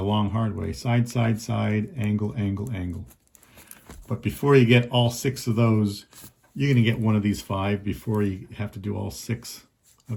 long hard way. Side, side, side, angle, angle, angle. But before you get all 6 of those, you're going to get one of these 5 before you have to do all 6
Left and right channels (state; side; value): identical; both; correlation 1.00